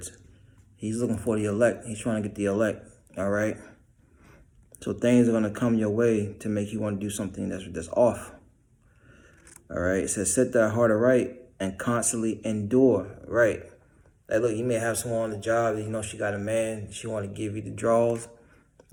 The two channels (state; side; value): identical; both; correlation 1.00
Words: He's looking for the elect. He's trying to get the elect. All right. So things are going to come your way to make you want to do something that's off. All right. It says, set thy heart aright and constantly endure. Right. Like, look, you may have someone on the job, she got a man, she want to give you the draws.